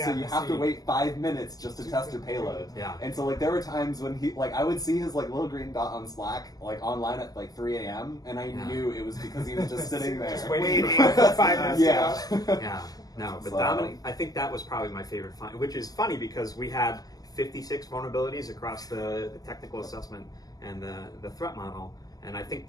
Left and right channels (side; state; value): right; late; 0.18 ms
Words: you have to wait 5 minutes just to test your payload. Yeah. And so like there were times when he like I would see his like little green dot on Slack like online at like 3 a.m. and I knew it was because he was just sitting there. Just waiting for 5 minutes. Yeah. yeah. No, but So- Dominic, I think that was probably my favorite find, which is funny because we had 56 vulnerabilities across the technical assessment and the threat model. And I think